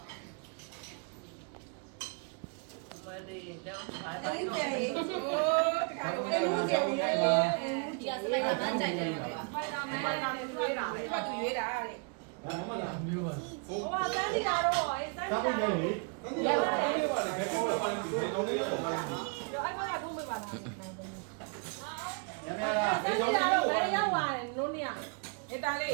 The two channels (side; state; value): left; quieter; 37.4 dB